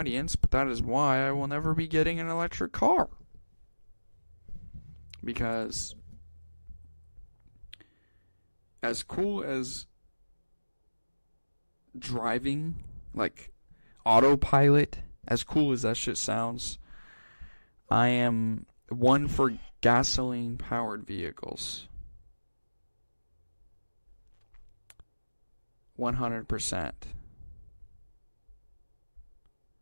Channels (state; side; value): inverted; both; correlation -1.00